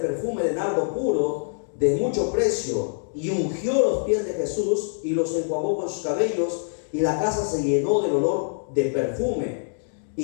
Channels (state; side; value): silent; right; digital silence